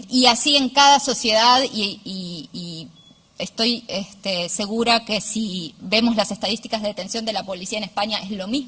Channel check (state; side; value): identical; both; correlation 1.00